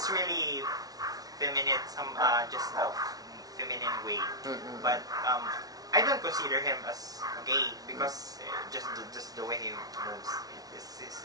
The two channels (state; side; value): late; left; 0.18 ms